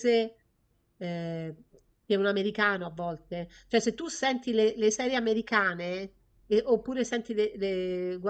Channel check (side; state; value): both; identical; correlation 1.00